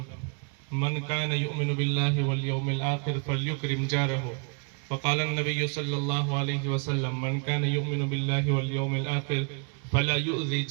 मन कान युमिनु बिल्लाहि वल यौमिल आखिर फल्युकरिम जारहु। फ़क़ाला नबी सल्लल्लाहु अलैहि वसल्लम मन कान युमिनु बिल्लाहि वल यौमिल आखिर फला युज़ी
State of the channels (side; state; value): left; quieter; 38.4 dB